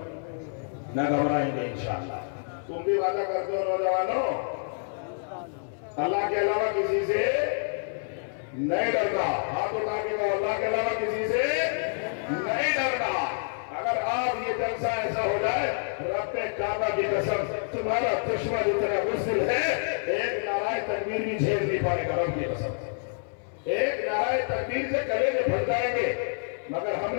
نہ گھبرائیں گے انشاءاللہ۔ تم بھی وعدہ کرتے ہو نوجوانوں، اللہ کے علاوہ کسی سے نہیں ڈرنا۔ ہاتھ اٹھا کے کہو اللہ کے علاوہ کسی سے نہیں ڈرنا۔ اگر آپ یہ جلسہ ایسا ہو جائے، رب کعبہ کی قسم تمہارا دشمن اتنا بزدل ہے، ایک نعرہ تکبیر بھی جھیل نہیں پائے گا رب کی قسم سے۔ ایک نعرہ تکبیر سے گلے میں پھٹ جائیں گے۔ مگر ہم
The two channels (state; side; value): silent; right; 59 dB below the other